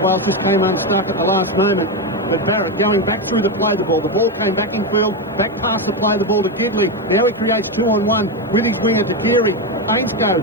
Wales. Just came unstuck at the last moment. But Barrett going back through the play the ball. The ball came back in field, back past the play the ball to Gidley. Now he creates 2-on-1 with his winger to Deary.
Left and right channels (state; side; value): normal; both; correlation 0.10